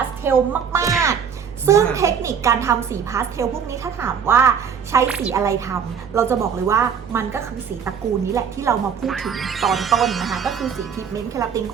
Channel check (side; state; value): left; quieter; 7.1 dB